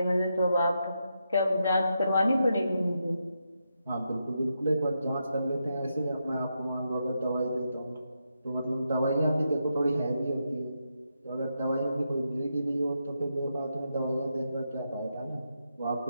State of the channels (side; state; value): both; inverted; correlation -0.84